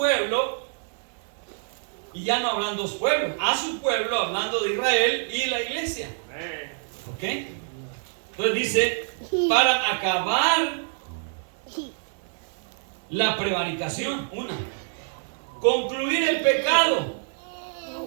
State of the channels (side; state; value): left; silent; digital silence